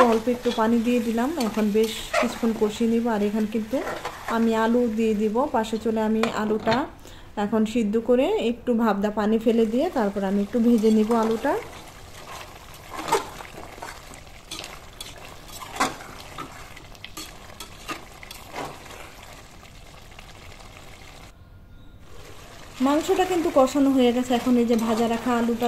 অল্প একটু পানি দিয়ে দিলাম, এখন বেশ কিছুক্ষণ কষিয়ে নিব। আর এখানে কিন্তু আমি আলু দিয়ে দিব পাশে চলে। আমি আলুটা এখন সিদ্ধ করে একটু ভাবদা পানি ফেলে দিয়ে তারপর আমি একটু ভেজে নিব আলুটা। মাংসটা কিন্তু কষানো হয়ে গেছে, এখন এই যে ভাজা রাখা আলুটা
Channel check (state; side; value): identical; both; correlation 1.00